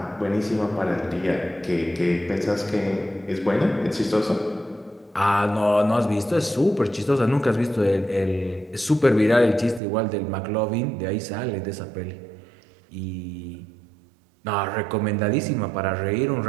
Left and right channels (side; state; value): left; drops out; at 9.8 s